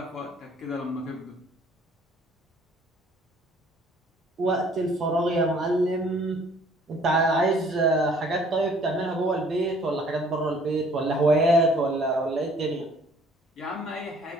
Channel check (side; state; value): both; normal; correlation 0.57